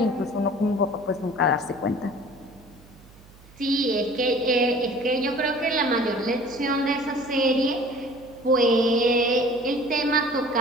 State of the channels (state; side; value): noise; right; hum, 24 dB below the sound